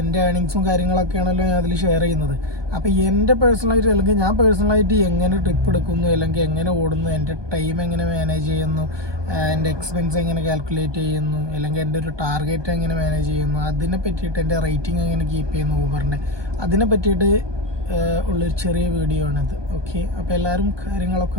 എൻ്റെ ഏണിങ്സും കാര്യങ്ങളൊക്കെയാണല്ലോ ഞാൻ അതിൽ ഷെയർ ചെയ്യുന്നത്. അപ്പോൾ എൻ്റെ പേഴ്സണലായിട്ട്, അല്ലെങ്കിൽ ഞാൻ പേഴ്സണലായിട്ട് എങ്ങനെ ട്രിപ്പ് എടുക്കുന്നു, അല്ലെങ്കിൽ എങ്ങനെ ഓടുന്നു, എൻ്റെ ടൈം എങ്ങനെ മാനേജ് ചെയ്യുന്നു, എൻ്റെ എക്സ്പെൻസ് എങ്ങനെ കാൽക്കുലേറ്റ് ചെയ്യുന്നു, അല്ലെങ്കിൽ എൻ്റെ ഒരു ടാർഗറ്റ് എങ്ങനെ മാനേജ് ചെയ്യുന്നു, അതിനെ പറ്റിയിട്ട് എൻ്റെ റേറ്റിംഗ് എങ്ങനെ കീപ്പ് ചെയ്യുന്നു ഊബറിൻ്റെ, അതിനെ പറ്റിയിട്ട് ഉള്ളൊരു ചെറിയ വീഡിയോ ആണിത്. ഓക്കെ, അപ്പോൾ എല്ലാവരും കാര്യങ്ങളൊക്കെ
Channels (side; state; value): left; late; 1.2 ms